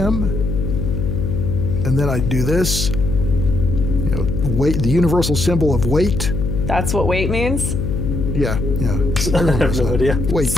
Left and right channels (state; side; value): noise; left; hum, 2 dB below the sound